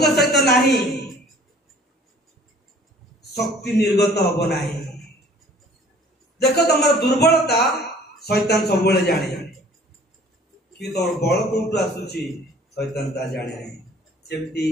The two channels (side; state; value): both; normal; correlation 0.52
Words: सहित नाही, शक्ति निर्गत हबो नाही। देखो तमर दुर्बलता शैतान सब बेले जाने कि तमर बल कोठु आसुची शैतान ता जाने नाही। सेमती